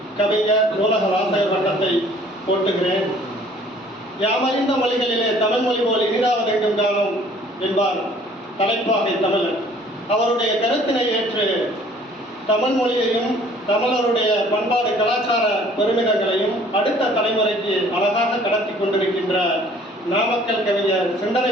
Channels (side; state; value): both; normal; correlation 0.55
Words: கவிஞர் நூலக வாசகர் வட்டத்தை போட்டுகிறேன். யாமறிந்த மொழிகளிலே தமிழ் மொழி போல் இனிதாவதெங்கும் காணும் என்பார் தலைப்பாகை தமிழர். அவருடைய கருத்தினை ஏற்று தமிழ் மொழியையும் தமிழருடைய பண்பாடு கலாச்சார பெருமிதங்களையும் அடுத்த தலைமுறைக்கு அழகாக கடத்தி கொண்டிருக்கின்ற நாமக்கல் கவிஞர்